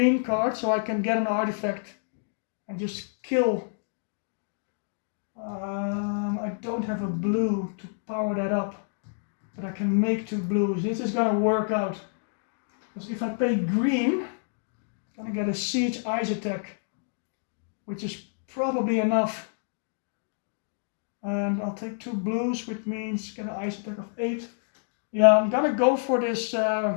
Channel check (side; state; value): right; silent; digital silence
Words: card so I can get an artifact and just kill. I don't have a blue to power that up, but I can make 2 blues. This is gonna work out. Because if I pay green, I'm gonna get a siege ice attack, which is probably enough. And I'll take 2 blues, which means get an ice attack of 8. Yeah, I'm gonna go for this